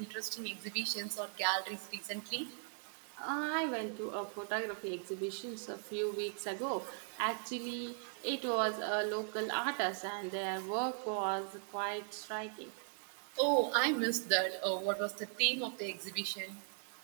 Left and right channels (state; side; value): silent; left; 52 dB below the other